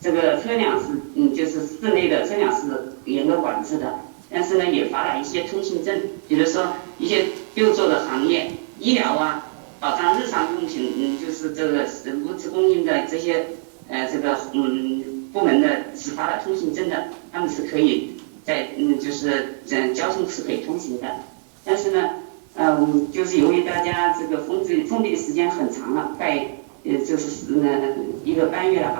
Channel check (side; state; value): left; silent; digital silence